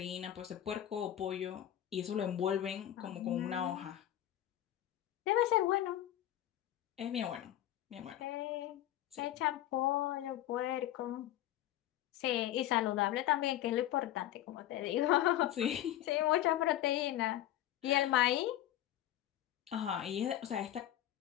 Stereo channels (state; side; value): quieter; right; 12.9 dB